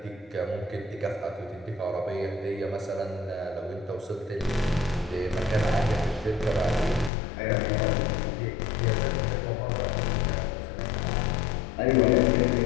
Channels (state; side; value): drops out; right; at 7.1 s